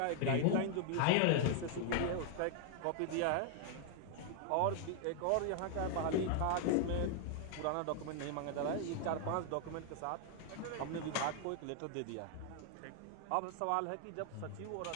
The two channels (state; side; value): different; both; correlation 0.00